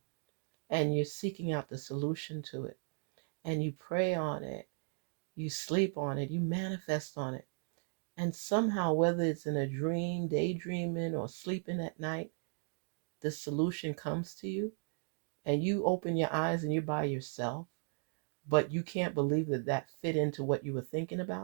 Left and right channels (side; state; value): left; silent; 54 dB below the other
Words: and you're seeking out the solution to it and you pray on it, you sleep on it, you manifest on it, and somehow, whether it's in a dream, daydreaming, or sleeping at night, the solution comes to you and you open your eyes and you're by yourself, but you can't believe that that fit into what you were thinking